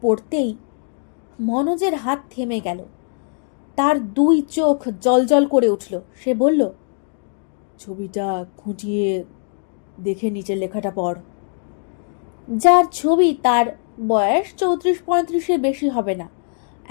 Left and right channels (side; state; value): right; silent; 55 dB below the other